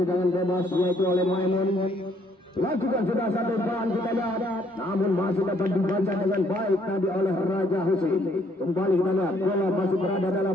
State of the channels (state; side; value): normal; both; correlation 0.66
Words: bebas yaitu oleh Maimun. Lakukan sudah satu ban kita lihat namun masih dapat dibaca dengan baik tadi oleh Raja Husin. Kembali kita lihat bola masih berada